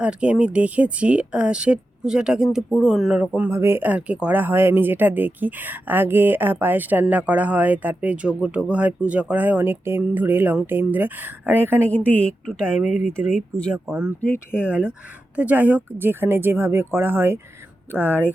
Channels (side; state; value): both; normal; correlation 0.91